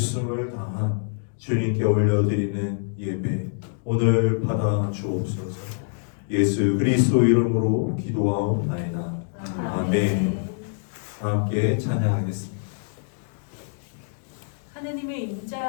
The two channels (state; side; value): silent; right; digital silence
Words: 다한 주님께 올려드리는 예배 오늘 받아 주옵소서. 예수 그리스도 이름으로 기도하옵나이다. 아멘. 함께 찬양하겠습니다. 하나님의